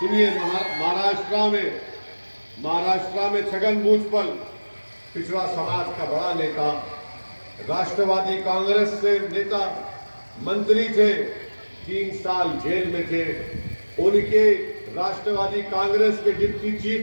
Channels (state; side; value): inverted; both; correlation -1.00